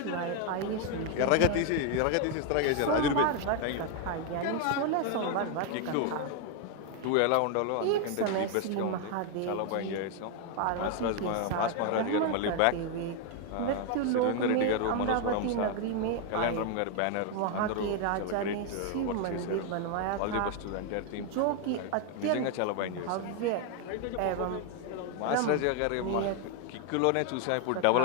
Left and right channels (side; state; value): both; different; correlation 0.01